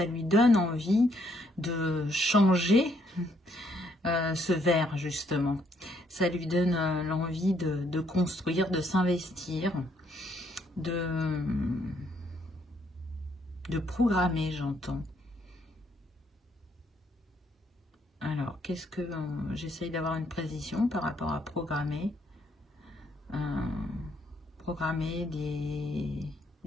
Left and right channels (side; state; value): both; normal; correlation 0.70